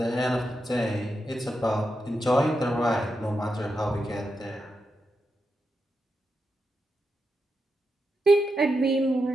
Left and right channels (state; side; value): normal; both; correlation 0.86